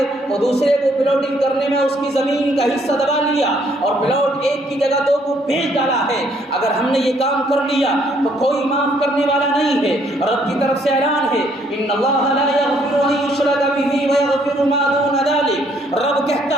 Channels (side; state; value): both; normal; correlation 0.67